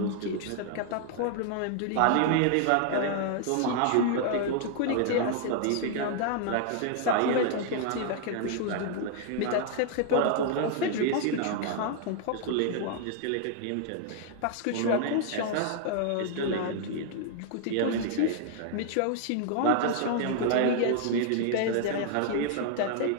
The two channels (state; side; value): different; both; correlation 0.00